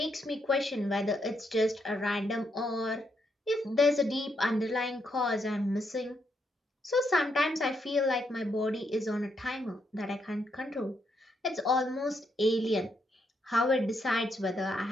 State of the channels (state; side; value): normal; both; correlation 0.78